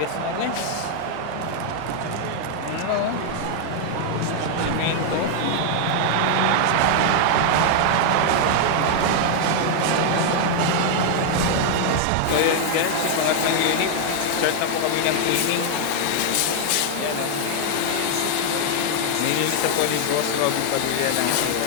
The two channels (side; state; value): both; different; correlation 0.00